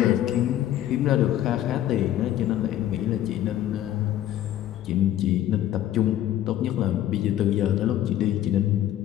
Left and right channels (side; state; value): right; quieter; 12.4 dB